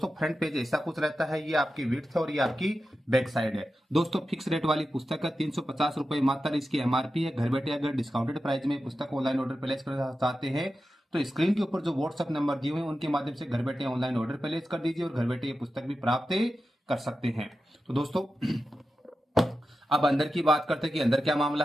फ्रंट पेज ऐसा कुछ रहता है, ये आपकी विड्थ है और ये आपकी बैक साइड है। दोस्तों, फिक्स रेट वाली पुस्तक है, 350 रुपए मात्र इसकी एमआरपी है। घर बैठे अगर डिस्काउंटेड प्राइस में पुस्तक ऑनलाइन ऑर्डर प्लेस करना चाहते हैं तो स्क्रीन के ऊपर जो व्हाट्सएप नंबर दिए हुए हैं उनके माध्यम से घर बैठे ऑनलाइन ऑर्डर प्लेस कर दीजिए और घर बैठे ये पुस्तक भी प्राप्त कर सकते हैं। तो दोस्तों, अब अंदर की बात करते हैं कि अंदर क्या मामला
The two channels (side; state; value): both; normal; correlation 0.91